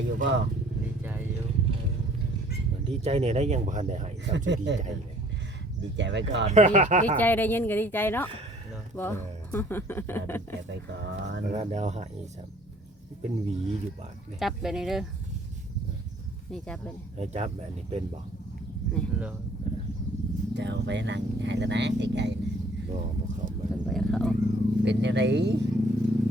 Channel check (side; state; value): both; normal; correlation 0.57